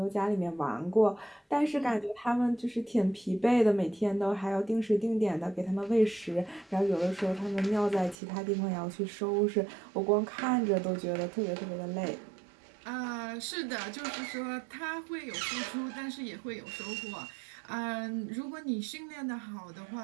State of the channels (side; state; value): left; drops out; at 8.2 s